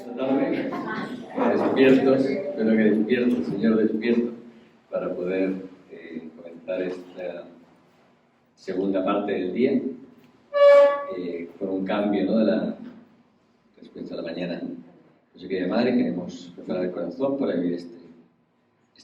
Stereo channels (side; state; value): both; identical; correlation 1.00